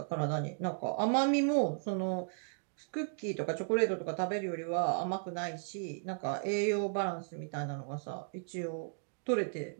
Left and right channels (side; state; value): left; silent; digital silence